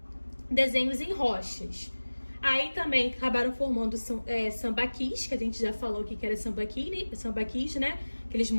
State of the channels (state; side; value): inverted; both; correlation -1.00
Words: desenhos em rochas. Aí também acabaram formando sambaquis, que a gente já falou que era sambaquis, né? Aqueles